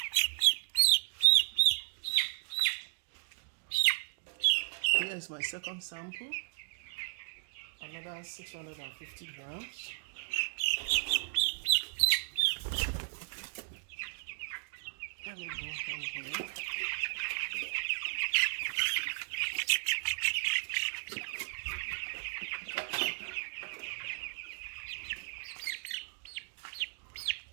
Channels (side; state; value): left; silent; digital silence